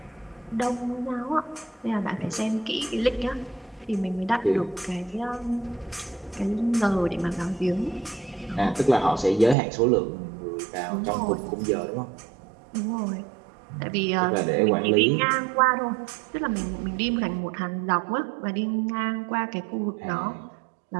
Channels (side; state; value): left; drops out; at 9.6 s